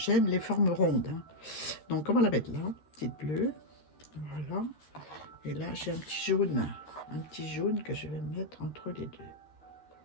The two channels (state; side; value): late; right; 13 ms